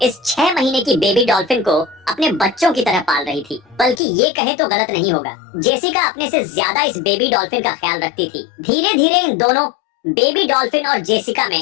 इस 6 महीने की बेबी डॉल्फिन को अपने बच्चों की तरह पाल रही थी। बल्कि ये कहे तो गलत नहीं होगा, जेसिका अपने से ज्यादा इस बेबी डॉल्फिन का ख्याल रखती थी। धीरे धीरे इन दोनों बेबी डॉल्फिन और जेसिका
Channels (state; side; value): drops out; right; at 4.0 s